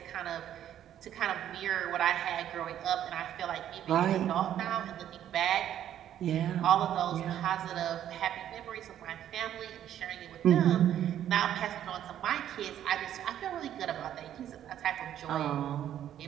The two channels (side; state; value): left; quieter; 10.9 dB